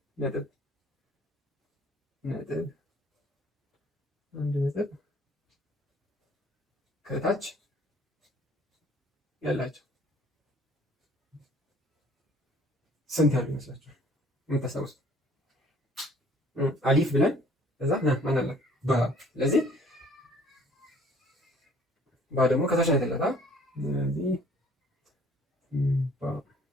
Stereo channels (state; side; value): normal; both; correlation 0.56